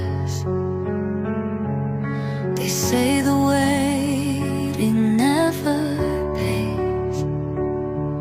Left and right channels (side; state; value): both; identical; correlation 1.00